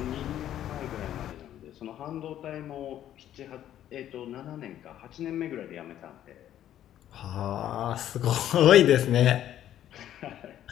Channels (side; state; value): right; quieter; 11.5 dB